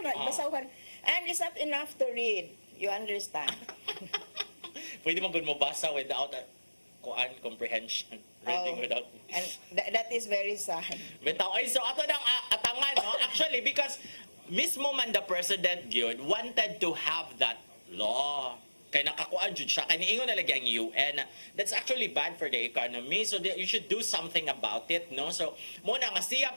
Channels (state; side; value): inverted; both; correlation -1.00